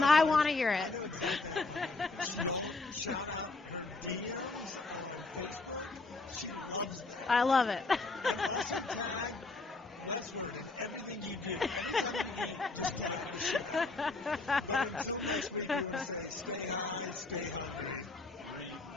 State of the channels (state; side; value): quieter; right; 3.6 dB